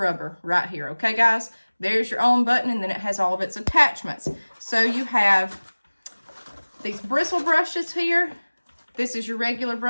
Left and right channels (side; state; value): both; inverted; correlation -1.00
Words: right here, okay, guys? There's your on button, and then it has all of its attachments. So you have these bristle brushes here. This is your regular